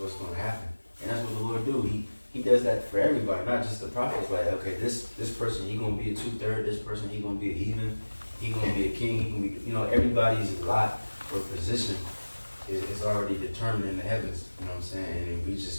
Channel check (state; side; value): inverted; both; correlation -1.00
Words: going to happen, and that's what the Lord do. He does that for everybody, not just the prophets. Like, okay, this person he gonna be a 2/3. This person he gonna be a heathen. He gonna be a king. He gonna be, everybody's lot or position is already determined in the heavens. You know what I'm saying? And we